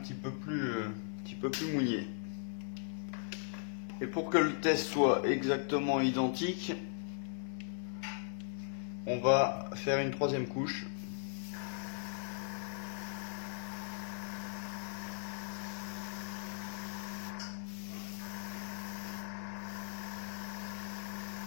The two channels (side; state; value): right; silent; digital silence